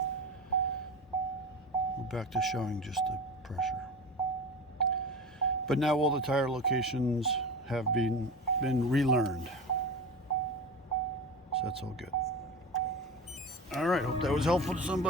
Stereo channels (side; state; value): both; normal; correlation 0.29